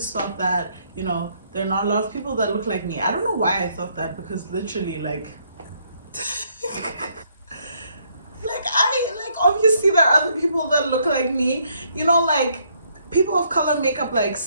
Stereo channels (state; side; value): inverted; both; correlation -0.70